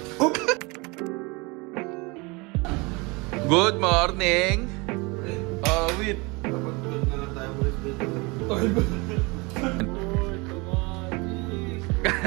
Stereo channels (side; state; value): left; quieter; 26.8 dB